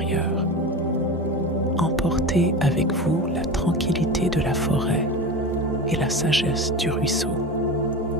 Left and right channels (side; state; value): both; normal; correlation 0.27